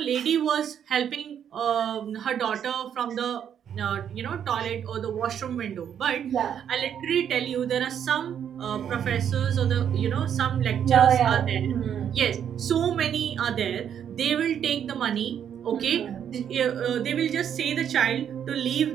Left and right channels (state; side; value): quieter; left; 8.9 dB